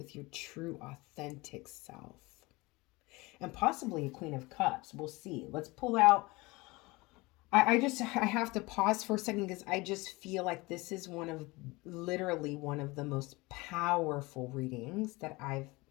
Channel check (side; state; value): right; quieter; 23.2 dB